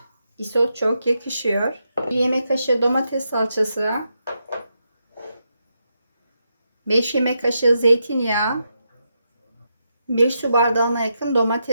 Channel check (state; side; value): inverted; both; correlation -0.84